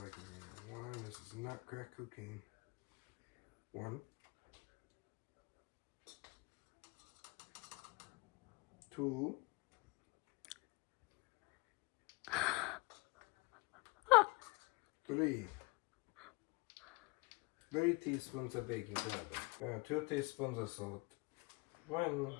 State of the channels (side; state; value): right; quieter; 27.8 dB